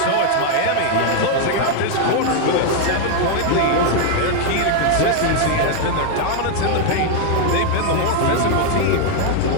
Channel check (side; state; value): both; different; correlation 0.00